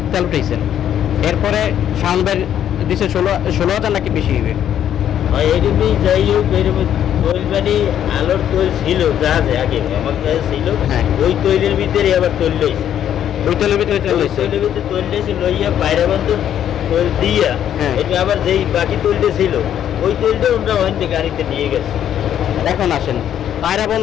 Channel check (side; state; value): right; quieter; 10.2 dB